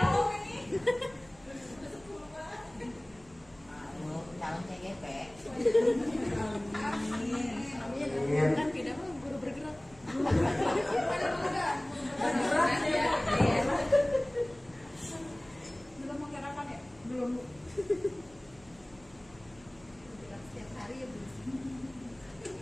Calon CGP. Amin. Kan tidak mau guru bergerak. Belum mau kerakan ya? Belum. Setiap hari ya belum.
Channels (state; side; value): noise; right; hum, 26 dB below the sound